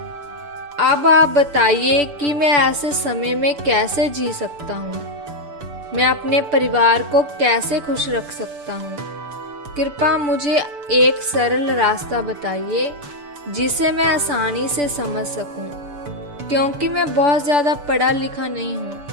अब आप बताइए कि मैं ऐसे समय में कैसे जी सकता हूँ? मैं अपने परिवार को कैसे खुश रख सकता हूँ? कृपया मुझे एक सरल रास्ता बताइए जिसे मैं आसानी से समझ सकूं, क्योंकि मैं बहुत ज़्यादा पढ़ा लिखा नहीं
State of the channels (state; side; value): late; left; 6.9 ms